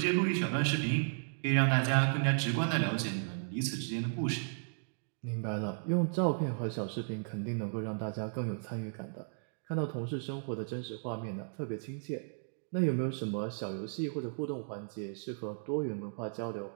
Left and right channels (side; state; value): left; silent; digital silence